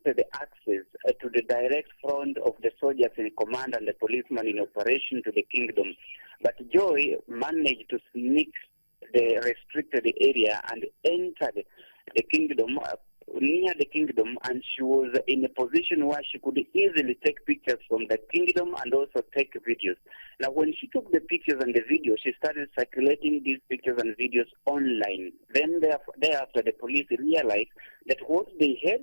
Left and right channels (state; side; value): inverted; both; correlation -1.00